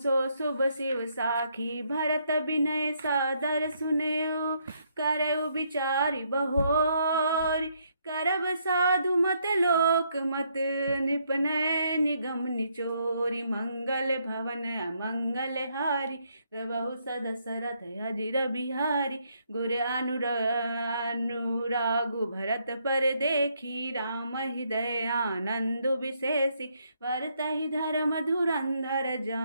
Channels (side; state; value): both; inverted; correlation -0.73